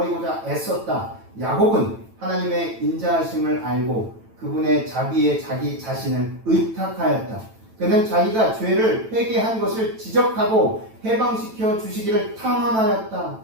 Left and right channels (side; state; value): left; late; 9.0 ms